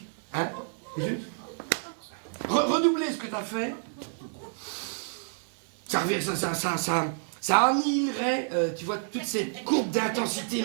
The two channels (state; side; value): silent; left; digital silence